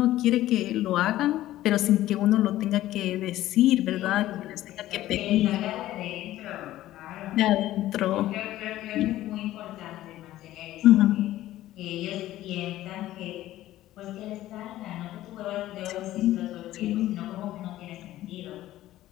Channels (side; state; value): right; quieter; 14.7 dB